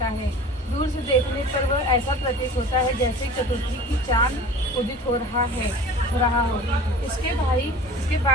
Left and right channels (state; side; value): normal; both; correlation 0.40